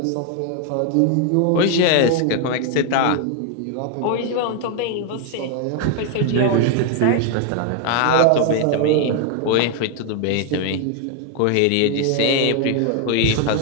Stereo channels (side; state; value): both; different; correlation 0.00